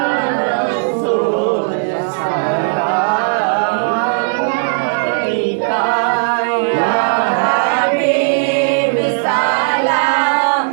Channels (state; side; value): silent; left; digital silence